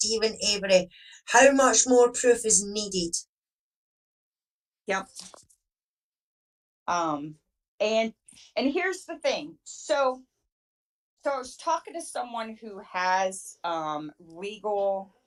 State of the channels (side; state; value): both; identical; correlation 1.00